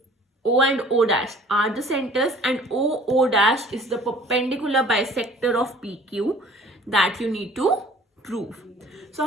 and O dash are the centers, and O dash is the perpendicular bisector of PQ that you need to prove.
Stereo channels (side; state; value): both; normal; correlation 0.51